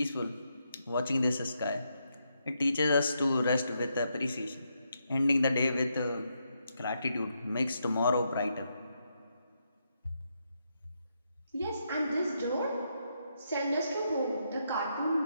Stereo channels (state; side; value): inverted; both; correlation -0.80